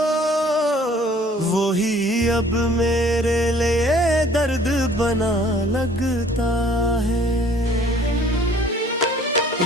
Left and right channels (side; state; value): both; normal; correlation 0.55